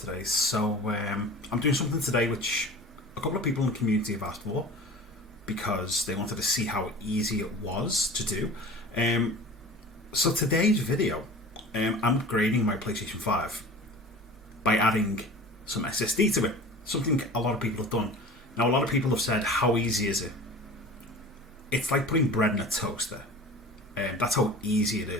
So I'm doing something today which a couple of people in the community have asked for because they wanted to see how easy it was to do. So today's video, I'm upgrading my PlayStation 5 by adding some SSD to it. Something a lot of people have done. Now, a lot of people have said, how easy is it? It's like putting bread in a toaster. That's how easy it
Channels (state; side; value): normal; both; correlation 0.39